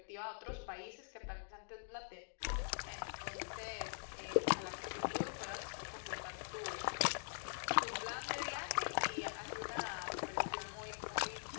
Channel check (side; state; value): right; silent; digital silence